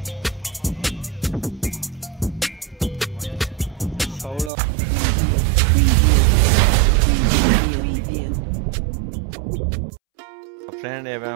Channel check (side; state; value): left; drops out; at 4.5 s